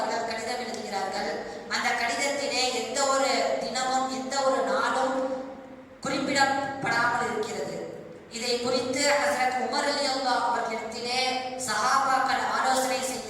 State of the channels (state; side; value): identical; both; correlation 1.00